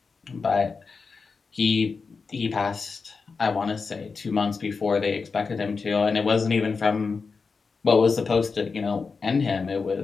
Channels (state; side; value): quieter; right; 4.8 dB